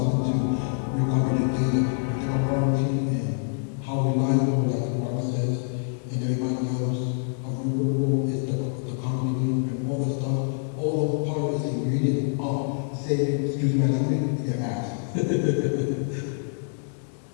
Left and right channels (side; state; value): right; silent; 61 dB below the other